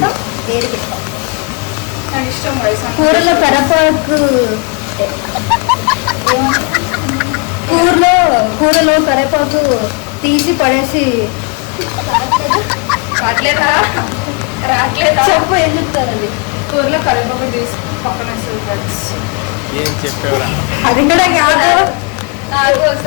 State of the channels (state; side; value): quieter; right; 32.3 dB